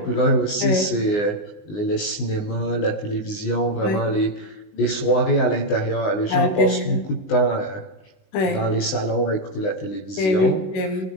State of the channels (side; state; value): right; late; 19 ms